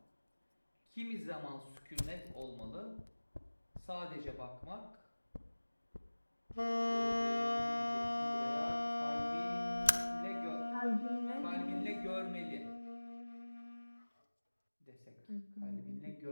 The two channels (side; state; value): both; inverted; correlation -1.00